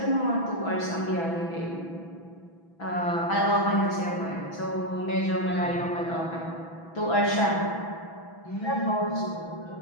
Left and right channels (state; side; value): late; right; 6.0 ms